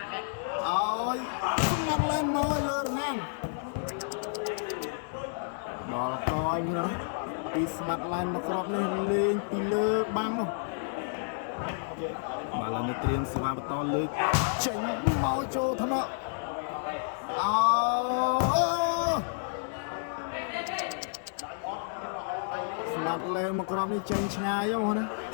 ឲ្យស្មាត់ឡែនមកលើរណាំដល់កលណាពីស្មាត់ឡែនមកគ្របនេះលេងពីលើបាំង បាល់ឡើងនេះត្រៀមសេវាបន្តលើកចេញមកចូលថ្នាក់ស្មាត់លេមកក្រុមនេះចេញឆ្ងាយហ៎ណា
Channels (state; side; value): silent; right; digital silence